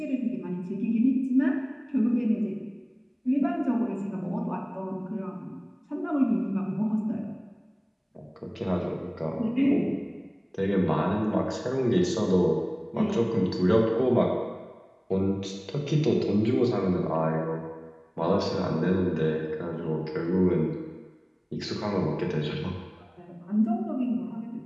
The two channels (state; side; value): identical; both; correlation 1.00